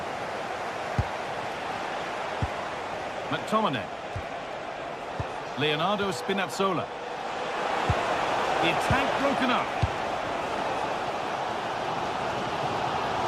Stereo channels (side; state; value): both; identical; correlation 1.00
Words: McTominay. Leonardo Spinazzola. The attack broken up.